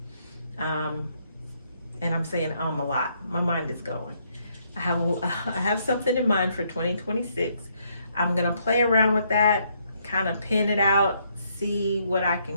And I'm saying a lot. My mind is going. I have something in mind for 2026. I'm going to play around with that, kind of pin it out, see what I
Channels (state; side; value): inverted; both; correlation -0.72